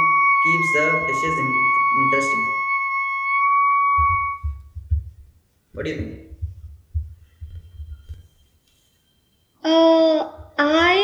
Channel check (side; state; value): both; identical; correlation 1.00